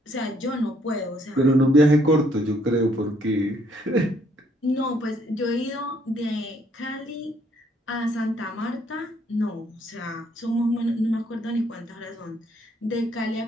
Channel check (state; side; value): normal; both; correlation 0.67